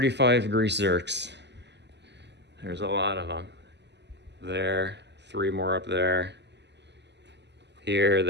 grease zerks. There's a lot of them. There, 3 more up there. Here,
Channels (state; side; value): late; left; 0.50 ms